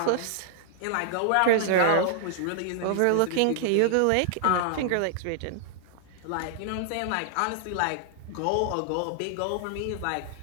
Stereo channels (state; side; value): different; both; correlation -0.01